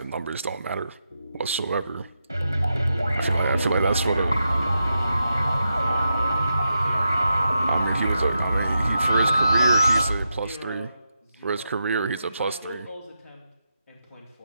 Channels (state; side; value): inverted; both; correlation -0.86